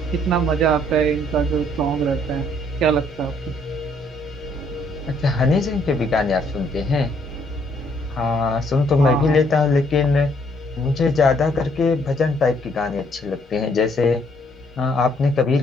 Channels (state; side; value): normal; both; correlation 0.67